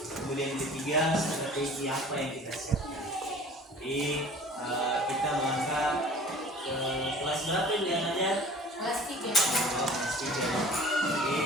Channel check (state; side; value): normal; both; correlation 0.46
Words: yang ketiga strategi apa yang kita siapkan. Jadi kita melangkah ke kelas berapa yang ada? Kelas 3. Kelas 3. Jadi